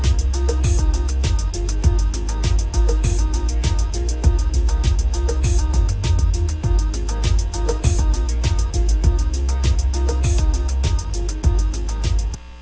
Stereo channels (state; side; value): identical; both; correlation 1.00